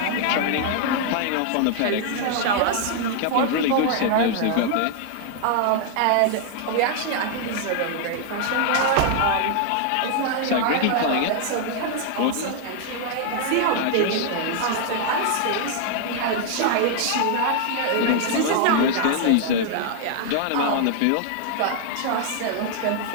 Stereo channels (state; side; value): different; both; correlation 0.00